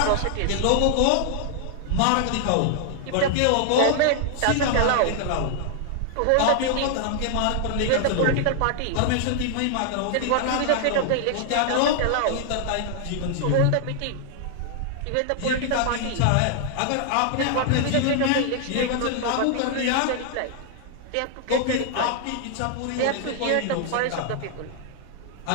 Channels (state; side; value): different; both; correlation 0.00